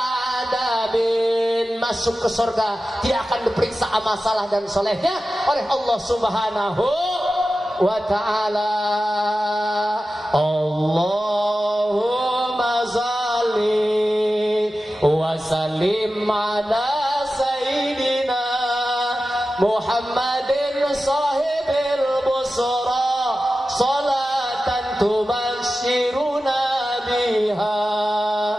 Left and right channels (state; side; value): normal; both; correlation 0.94